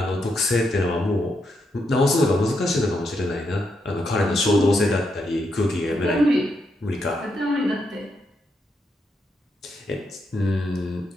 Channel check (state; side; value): normal; both; correlation 0.81